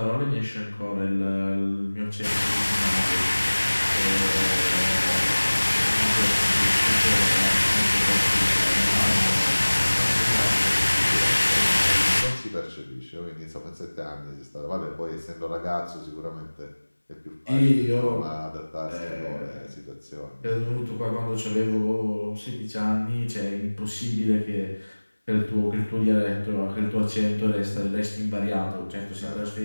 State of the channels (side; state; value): both; inverted; correlation -1.00